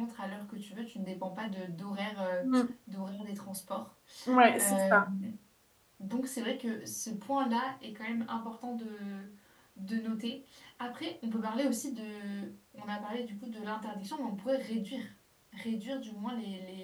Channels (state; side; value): identical; both; correlation 1.00